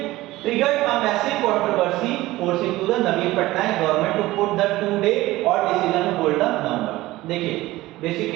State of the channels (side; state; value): left; quieter; 17.8 dB